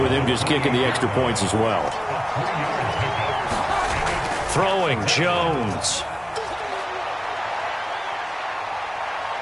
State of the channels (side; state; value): both; identical; correlation 1.00